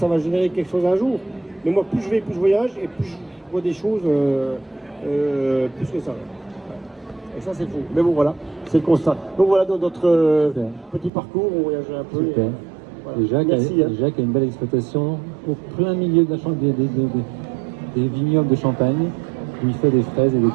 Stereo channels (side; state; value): left; drops out; at 11.1 s